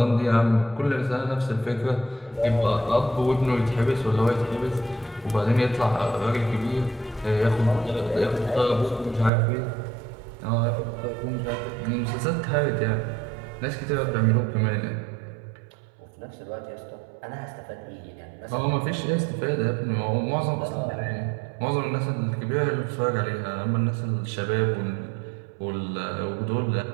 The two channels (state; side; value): drops out; left; at 9.3 s